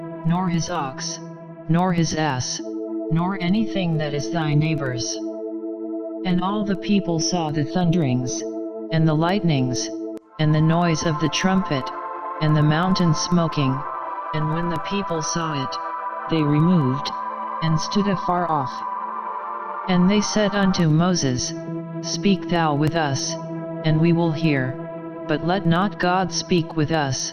nor his ox, nor his ass, nor anything that is thy neighbor's. And all the people saw the thunderings, and the lightnings, and the noise of the trumpet, and the mountain smoking, and when the people saw it, they removed, and stood afar off. And they said unto Moses, Speak thou with us, and we will hear, but let not God speak with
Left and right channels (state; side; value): identical; both; correlation 1.00